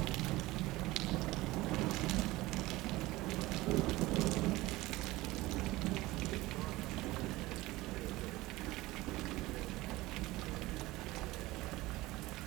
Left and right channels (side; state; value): left; quieter; 19.2 dB